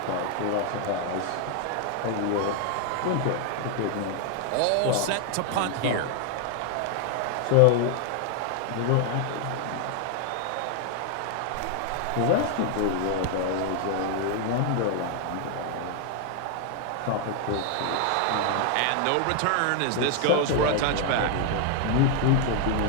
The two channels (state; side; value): different; both; correlation 0.00